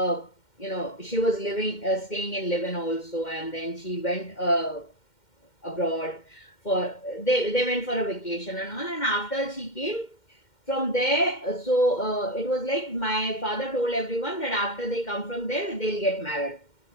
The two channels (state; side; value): late; right; 2.1 ms